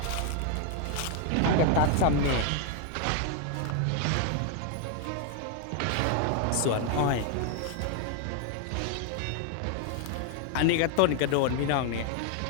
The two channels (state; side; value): different; both; correlation 0.00